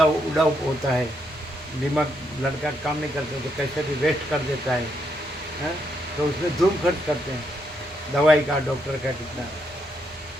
होता है, दिमाग लड़का काम नहीं करते तो कैसे भी वेस्ट कर देता है. तो उसमें धूम खर्च करते हैं. दवाई का, डॉक्टर का कितना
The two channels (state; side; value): normal; both; correlation 0.77